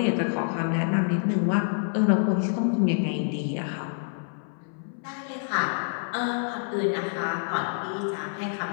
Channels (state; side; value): silent; right; 60 dB below the other